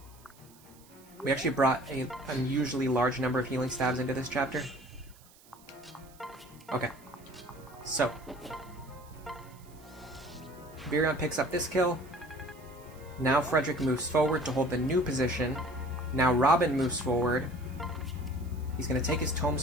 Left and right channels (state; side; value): noise; right; hiss, 25 dB below the sound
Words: We actually brought an unusually large number of healing stabs into this chapter. Okay. So. Virion picks up this kill. Now Frederick moves forward to hold the new position. Now Robin moves forward. He's going to take his